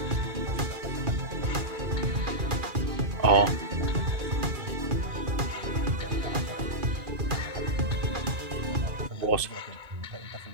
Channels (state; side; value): late; left; 2.4 ms